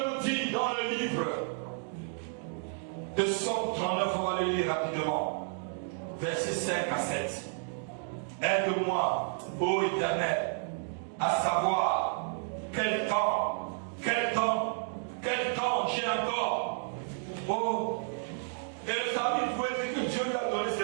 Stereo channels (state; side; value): silent; left; 57 dB below the other